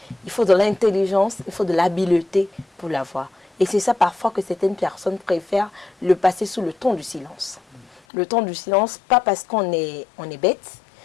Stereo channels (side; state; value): right; drops out; at 8.0 s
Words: il faut de l'intelligence, il faut de l'habileté pour l'avoir. Et c'est ça parfois que certaines personnes préfèrent le passer sous le ton du silence. Le ton du silence, pas parce qu'on est bête,